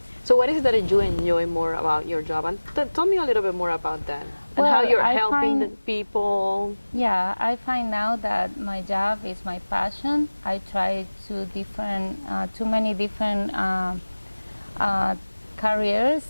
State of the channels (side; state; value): both; inverted; correlation -1.00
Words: So what is it that you enjoy more about your job? And tell me a little bit more about that. And Well, how you're I helping the find- people. Yeah, I find now that my job is my passion. I try too many different careers